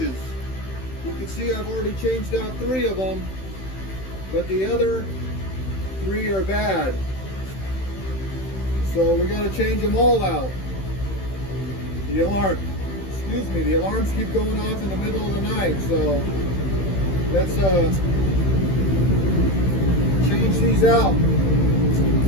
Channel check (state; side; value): late; right; 16 ms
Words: You can see I've already changed out 3 of them, but the other 3 are bad. So we got to change them all out. The alarms keep going off in the middle of the night, so let's change these out